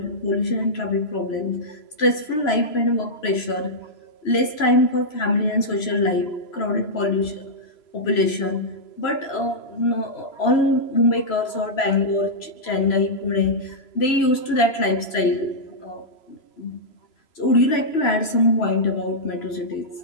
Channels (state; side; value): late; right; 3.0 ms